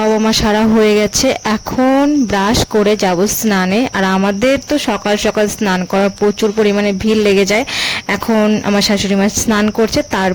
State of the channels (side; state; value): both; identical; correlation 1.00